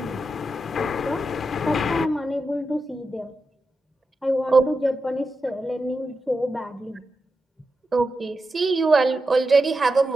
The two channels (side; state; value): both; normal; correlation 0.89